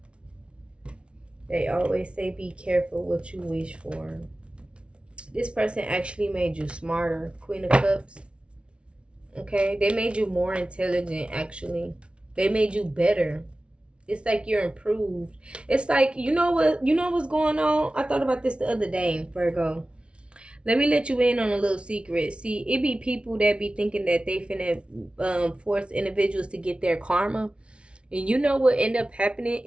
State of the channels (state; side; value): late; left; 0.059 ms